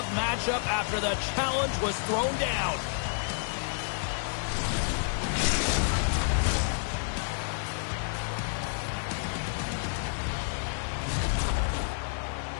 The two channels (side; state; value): right; silent; 58 dB below the other